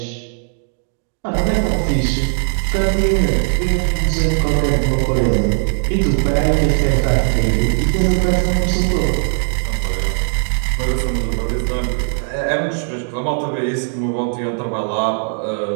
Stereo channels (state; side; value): silent; left; digital silence